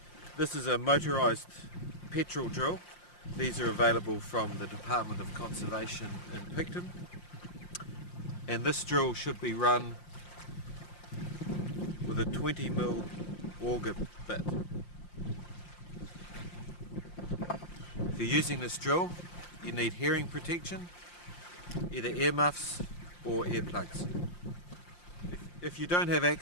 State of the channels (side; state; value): right; late; 5.7 ms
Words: This is a motorised petrol drill. These are available from the Dept of Conservation in Picton. And this drill should be run with a 20mm auger bit. If you're using this drill, you need hearing protection, either earmuffs or earplugs. If you don't have